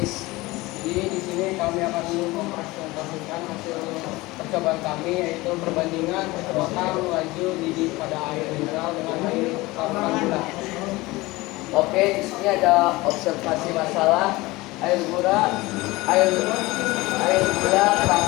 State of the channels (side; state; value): right; quieter; 20.9 dB